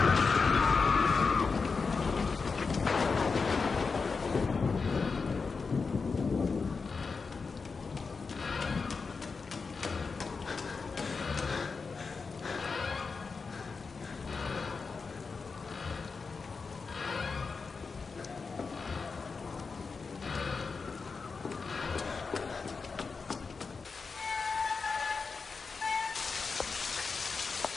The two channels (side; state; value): right; quieter; 4.8 dB